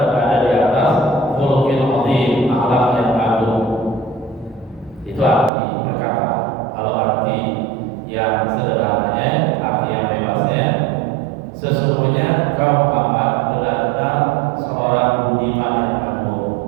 di atas khuluqin 'azim, akhlak yang agung. Itu arti perkata. Kalau arti yang sederhananya, arti yang bebasnya, sesungguhnya engkau Muhammad benar-benar seorang budiman yang agung.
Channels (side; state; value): left; drops out; at 5.5 s